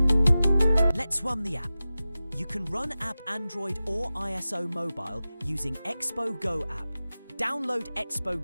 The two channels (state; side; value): inverted; both; correlation -0.95